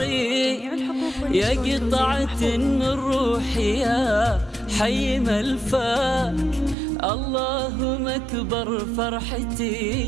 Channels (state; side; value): drops out; left; at 6.8 s